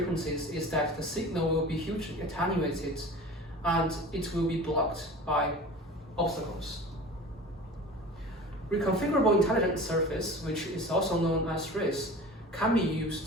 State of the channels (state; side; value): normal; both; correlation 0.38